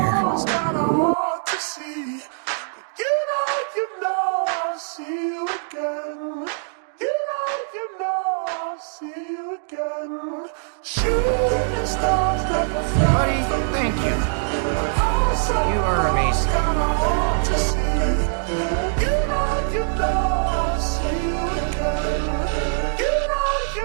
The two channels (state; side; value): silent; left; digital silence